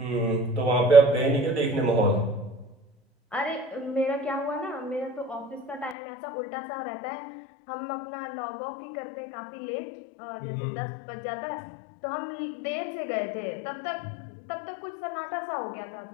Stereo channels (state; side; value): drops out; right; at 6.0 s